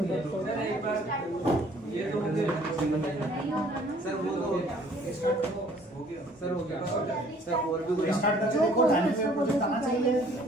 सर एक बार ये तो मुझे सर वो तो हो गया सर हो गया सर और भी कुछ स्टार्ट करके देखो, डायनेमिक वेब प्रोजेक्ट आना चाहिए।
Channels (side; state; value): both; normal; correlation 0.57